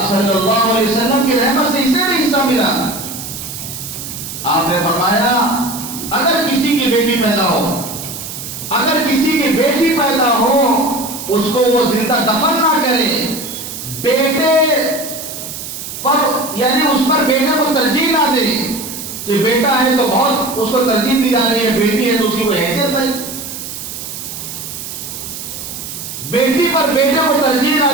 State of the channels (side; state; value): right; noise; hiss, 9 dB below the sound